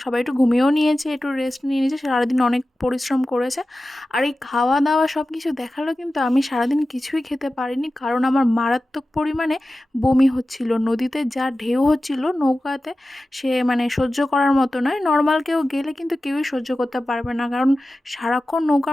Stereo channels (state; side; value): normal; both; correlation 0.95